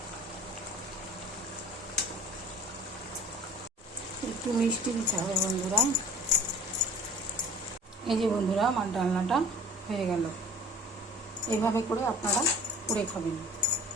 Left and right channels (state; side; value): normal; both; correlation 0.46